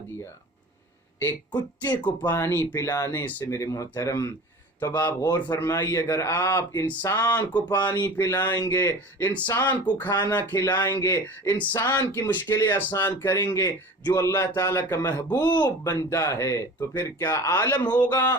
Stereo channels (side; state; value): both; normal; correlation 0.38